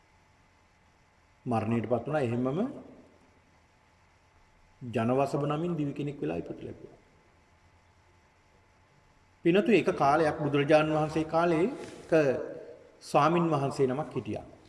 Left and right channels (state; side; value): identical; both; correlation 1.00